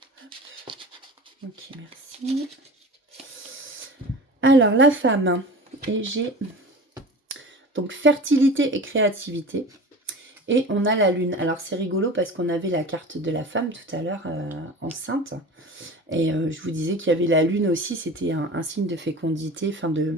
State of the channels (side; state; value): both; normal; correlation 0.35